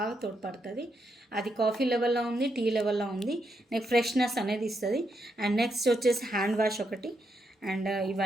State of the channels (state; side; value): normal; both; correlation 0.80